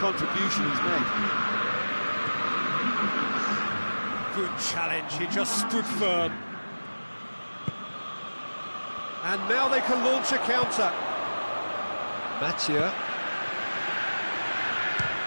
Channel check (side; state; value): both; inverted; correlation -1.00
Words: he's made. Good challenge, he just stood firm. And now they can launch a counter. Mathieu.